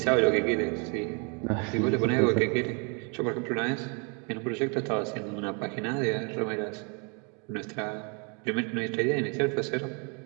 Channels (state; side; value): quieter; left; 35.4 dB